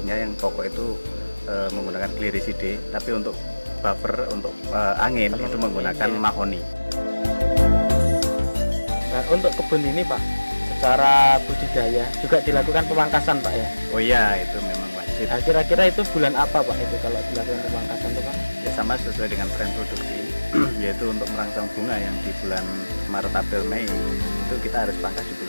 yang pokok itu menggunakan Glyriside, tapi untuk buffer untuk angin itu menggunakan mahoni. Nah, untuk kebun ini Pak, secara budidaya juga dilakukan pemangkasan Pak ya? Oh iya, itu memang wajib. Nah, kira-kira itu bulan apa Pak itu kalau dilakukan pemangkasan itu Pak? Ya, sama sesuai dengan tren produksi, yaitu untuk merangsang bunga yang di bulan Maret, April, Mei itu kita harus pangkas di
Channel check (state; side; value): inverted; both; correlation -1.00